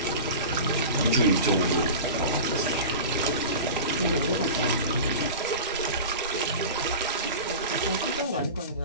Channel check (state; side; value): inverted; both; correlation -0.32